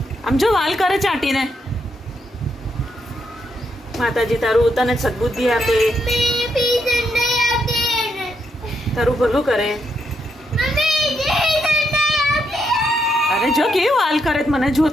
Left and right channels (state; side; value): normal; both; correlation 0.79